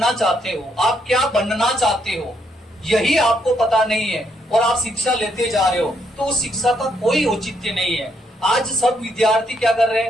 चाहते हो, आप क्या बनना चाहते हो, यही आपको पता नहीं है और आप शिक्षा लेते जा रहे हो, तो उस शिक्षा का कोई औचित्य नहीं है। आज सब विद्यार्थी क्या कर रहे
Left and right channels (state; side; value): normal; both; correlation 0.74